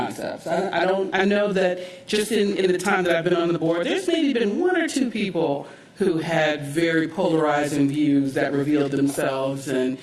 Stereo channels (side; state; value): both; identical; correlation 1.00